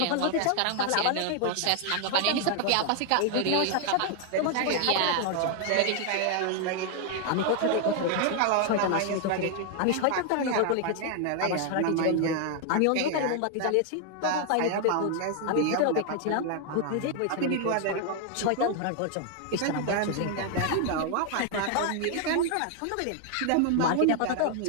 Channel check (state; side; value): different; both; correlation 0.00